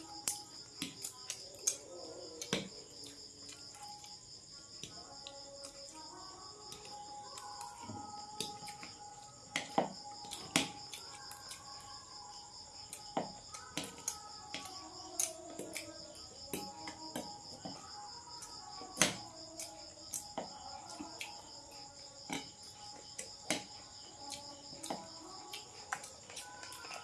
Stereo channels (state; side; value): identical; both; correlation 1.00